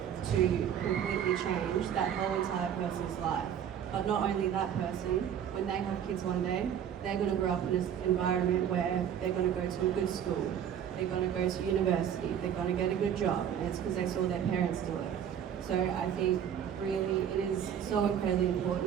to completely change that whole entire person's life. But not only that person, when they have kids one day, they're going to grow up in an environment where they're going to go to a good school, they're going to go to university, they're going to get a good job, and it's because they saw their parents do it. So I think really it is so incredibly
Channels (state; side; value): quieter; left; 9.1 dB